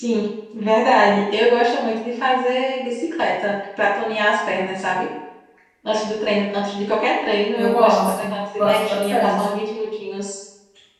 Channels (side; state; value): both; identical; correlation 1.00